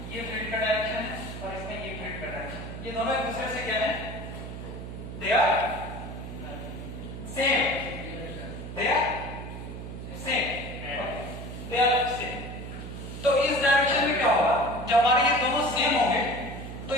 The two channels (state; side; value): noise; right; hum, 9 dB below the sound